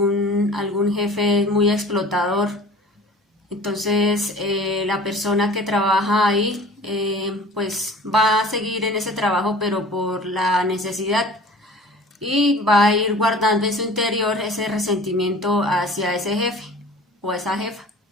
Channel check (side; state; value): both; normal; correlation 0.44